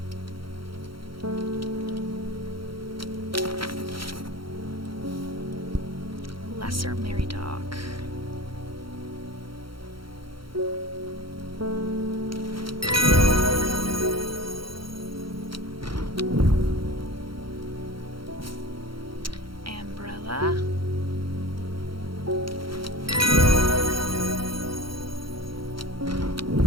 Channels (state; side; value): late; left; 0.74 ms